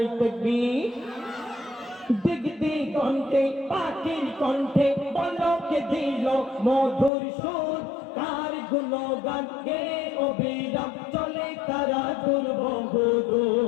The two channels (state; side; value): drops out; right; at 7.1 s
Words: তাকবীর দিগ দিগন্তে পাখির কণ্ঠে পলকে দিল মধুর সুর কার গুণগান গে অবিরাম চলে তারা দুর্বহ